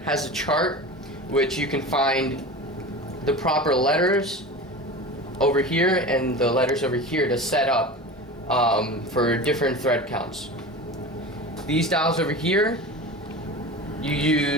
has a chart which you can find the proper letters over here and the letters over here to set up for different thread counts. These dials over here, you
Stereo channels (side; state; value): both; normal; correlation 0.31